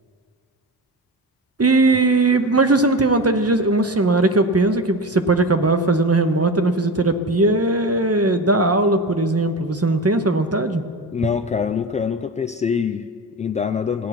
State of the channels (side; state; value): both; normal; correlation 0.27